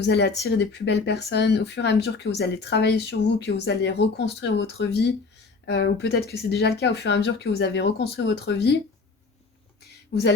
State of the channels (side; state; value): right; quieter; 4.2 dB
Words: allez attirer des plus belles personnes, au fur et à mesure que vous allez travailler sur vous, que vous allez reconstruire votre vie, ou peut-être que c'est déjà le cas, au fur et à mesure que vous avez reconstruit votre vie, Vous